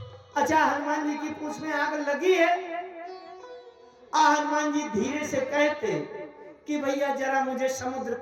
अच्छा, हनुमान जी की पूंछ में आग लगी है, हनुमान जी धीरे से कहते कि भैया जरा मुझे समुद्र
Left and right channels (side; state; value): both; identical; correlation 1.00